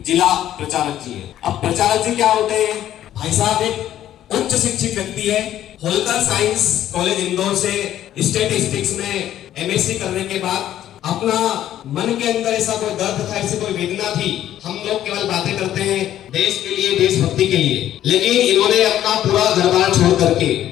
जिला प्रचारक जी है। अब प्रचारक जी क्या होते हैं? भाई साहब एक उच्च शिक्षित व्यक्ति है। होलकर साइंस कॉलेज इंदौर से स्टैटिस्टिक्स में एमएससी करने के बाद अपना मन के अंदर ऐसा कोई दर्द था, ऐसी कोई वेदना थी। हम लोग केवल बातें करते हैं देश के लिए, देशभक्ति के लिए, लेकिन इन्होंने अपना पूरा घर-बार छोड़ करके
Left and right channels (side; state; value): right; quieter; 12.0 dB